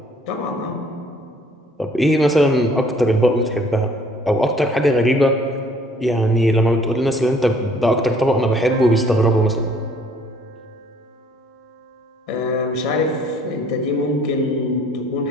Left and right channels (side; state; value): both; normal; correlation 0.58